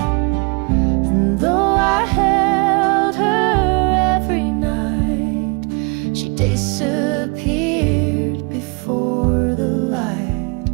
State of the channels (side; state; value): left; quieter; 31.4 dB